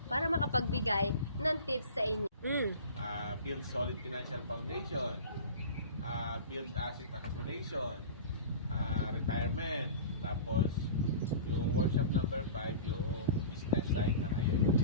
para makapagbigay ng tips sa inyo. Build solid financial foundation, build asset accumulation, retirement, tapos yung workshop number 5, yung business side ng IMG.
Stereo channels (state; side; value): inverted; both; correlation -0.37